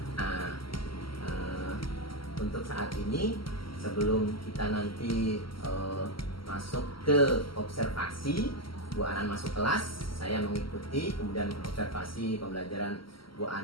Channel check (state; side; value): late; right; 0.74 ms